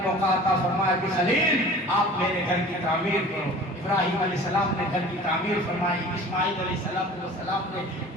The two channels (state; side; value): normal; both; correlation 0.43